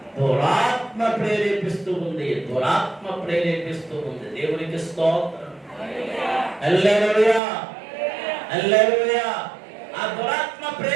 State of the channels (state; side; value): drops out; left; at 7.4 s